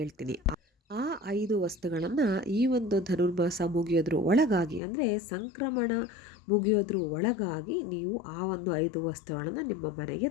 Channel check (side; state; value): right; drops out; at 4.8 s